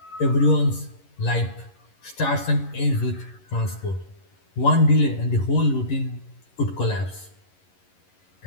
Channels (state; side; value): late; right; 11 ms